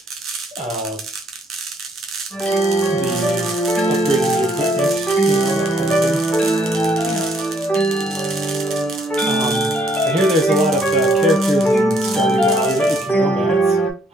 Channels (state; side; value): normal; both; correlation 0.68